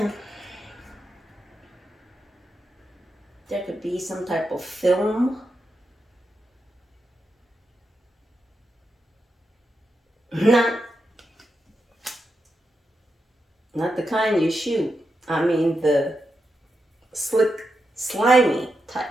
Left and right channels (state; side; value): normal; both; correlation 0.87